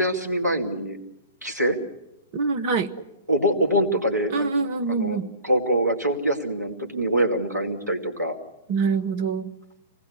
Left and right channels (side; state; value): both; inverted; correlation -0.39